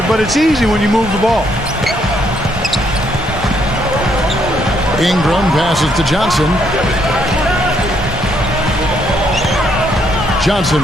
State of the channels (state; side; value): normal; both; correlation 0.72